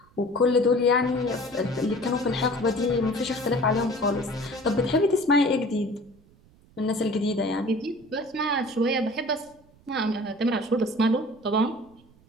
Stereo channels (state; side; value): noise; right; rumble, 28 dB below the sound